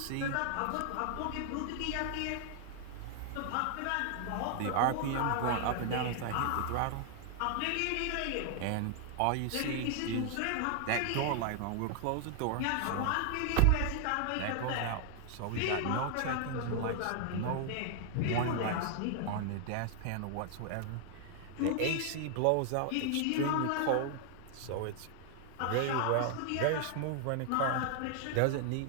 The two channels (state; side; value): different; both; correlation 0.00